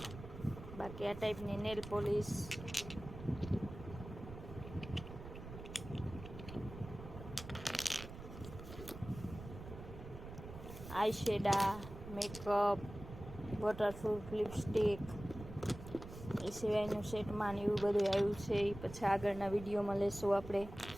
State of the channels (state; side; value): noise; right; rumble, 12 dB below the sound